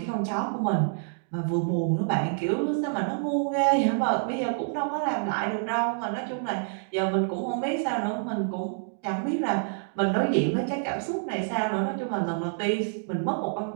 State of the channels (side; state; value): left; silent; digital silence